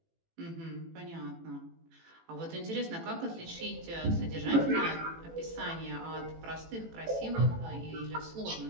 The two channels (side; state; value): left; late; 18 ms